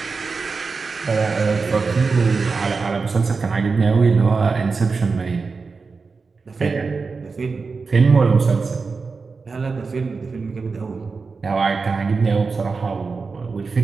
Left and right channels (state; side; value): quieter; left; 4.5 dB